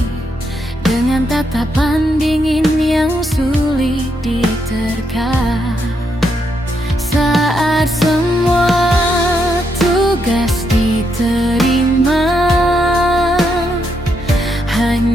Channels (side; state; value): both; normal; correlation 0.79